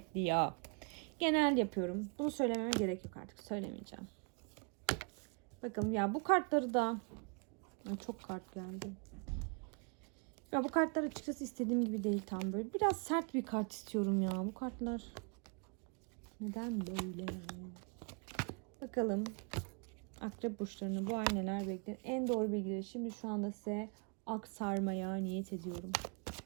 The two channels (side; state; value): left; quieter; 37.0 dB